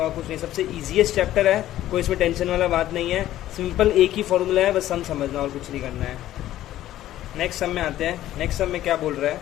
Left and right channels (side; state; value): right; quieter; 13.6 dB